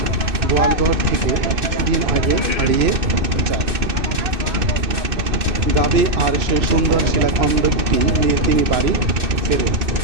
গোয়ালঘর থেকে কিছুদিন আগে হারিয়ে যায়। গাভী আর সেই সুন্দর শিলাখণ্ডটি নিয়ে তিনি বাড়ি ফেরেন।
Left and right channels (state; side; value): late; left; 2.6 ms